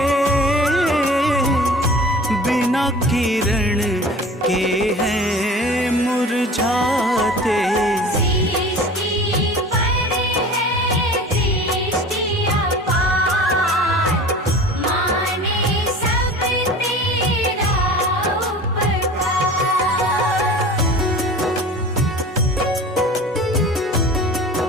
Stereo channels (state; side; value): normal; both; correlation 0.40